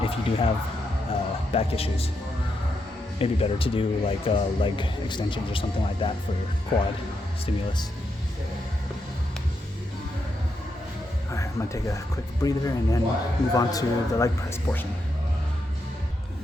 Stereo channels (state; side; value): normal; both; correlation 0.82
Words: if you do have back issues. Maybe better to do like leg extensions or something like that for quad stimulus. Alright, I'm gonna take a quick breather and then move on to the leg press portion.